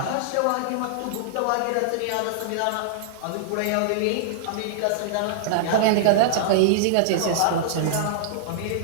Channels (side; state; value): both; different; correlation -0.01